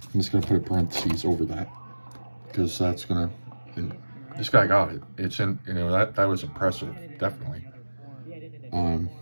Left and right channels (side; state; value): both; inverted; correlation -1.00